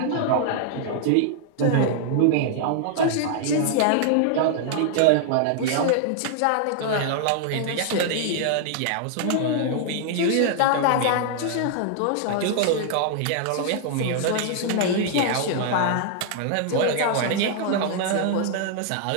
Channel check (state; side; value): different; both; correlation 0.00